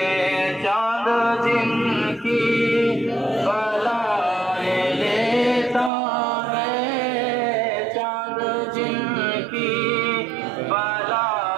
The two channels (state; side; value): drops out; left; at 5.9 s